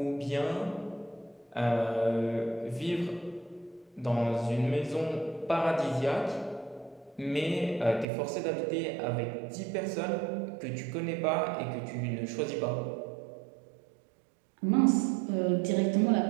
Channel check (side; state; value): left; drops out; at 8.1 s